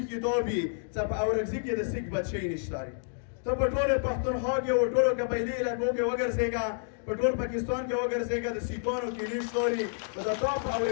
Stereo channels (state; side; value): silent; right; digital silence